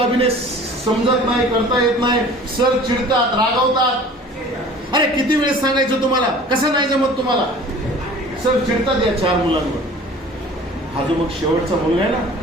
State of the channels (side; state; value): both; normal; correlation 0.45